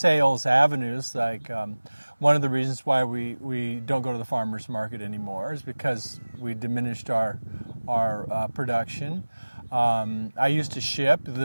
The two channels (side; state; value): both; inverted; correlation -1.00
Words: avenues. Like one of the reasons why we don't go to the farmers market anymore is because we diminished our production. I used to ship.